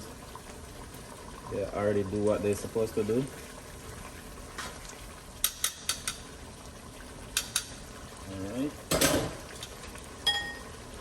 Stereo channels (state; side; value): identical; both; correlation 1.00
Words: to. They already do what they're supposed to do. Alright.